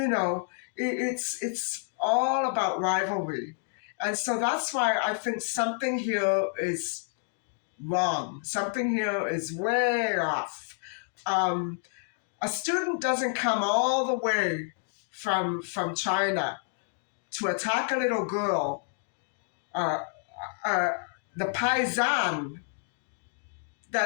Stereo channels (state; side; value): silent; right; 58 dB below the other